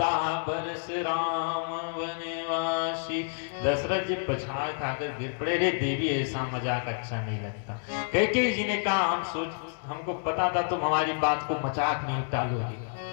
वर्ष राम वनवासी, दशरथ जी पछाड़ खाकर गिर पड़े। रे देवी, ऐसा मजाक अच्छा नहीं लगता। कैकेयी जी ने कहा हमको पता था तुम हमारी बात को मजाक में टालोगे।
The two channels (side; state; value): right; silent; 59 dB below the other